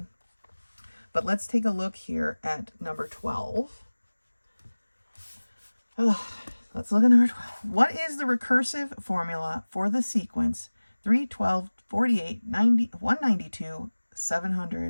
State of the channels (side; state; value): both; inverted; correlation -1.00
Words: But let's take a look here at number 12. Let's look at number 12. What is the recursive formula for the sequence 3, 12, 48, 90, 192,